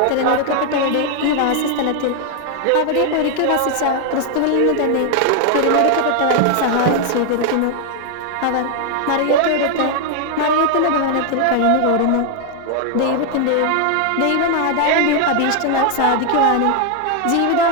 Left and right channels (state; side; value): different; both; correlation 0.00